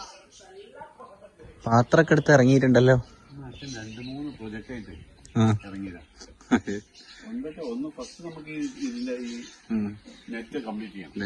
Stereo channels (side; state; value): both; identical; correlation 1.00